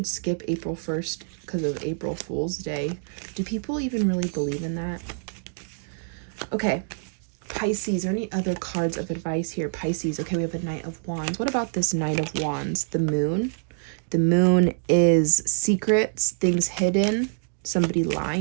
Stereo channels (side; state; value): left; silent; digital silence